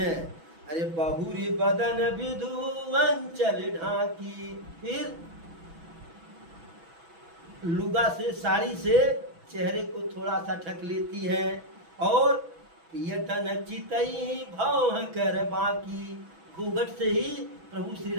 अरे बहुरी बदन विधु अंचल ढाकी, फिर लुगा से, साड़ी से चेहरे को थोड़ा सा ढक लेती हैं, और पियतन चितई भौं कर बाकी, घूंघट से ही प्रभु श्री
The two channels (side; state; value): left; late; 6.1 ms